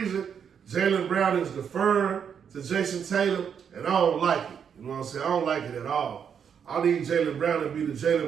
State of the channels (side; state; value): left; quieter; 7.5 dB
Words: Jaylen Brown is deferring to Jason Tatum, and I don't like it. You know what I'm saying? I don't like it at all. I need Jaylen Brown to be the Jaylen